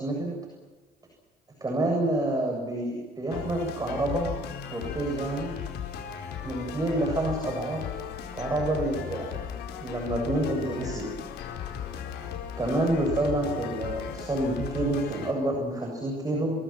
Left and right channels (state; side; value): normal; both; correlation 0.58